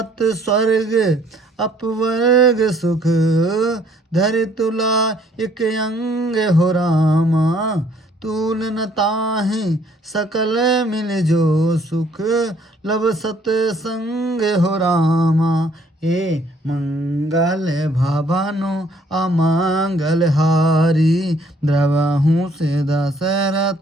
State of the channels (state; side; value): normal; both; correlation 0.62